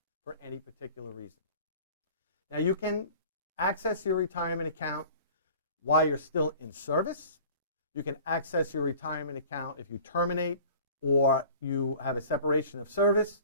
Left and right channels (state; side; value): inverted; both; correlation -0.45